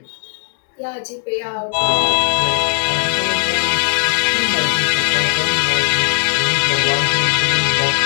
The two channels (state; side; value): silent; right; digital silence